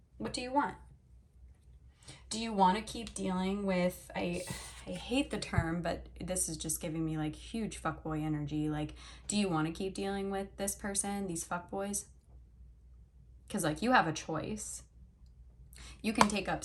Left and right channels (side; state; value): both; identical; correlation 1.00